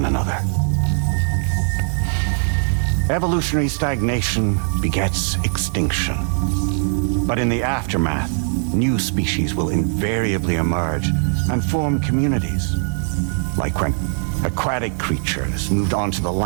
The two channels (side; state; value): left; silent; 62 dB below the other